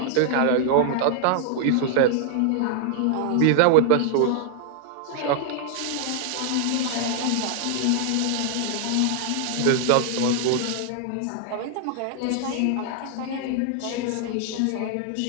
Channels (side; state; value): both; different; correlation 0.00